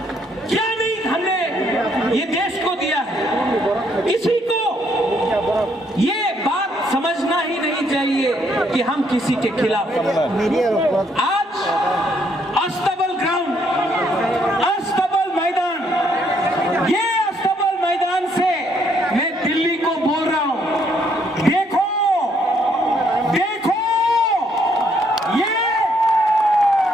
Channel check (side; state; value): both; normal; correlation 0.70